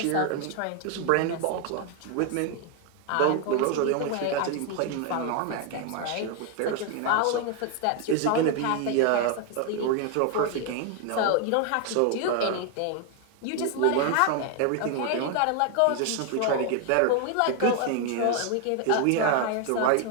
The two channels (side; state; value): both; different; correlation 0.00